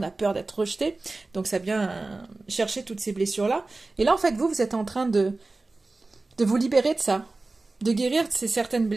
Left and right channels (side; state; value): left; quieter; 3.3 dB